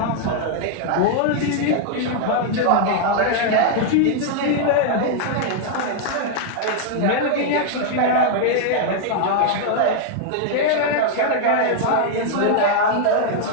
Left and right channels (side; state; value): both; different; correlation 0.00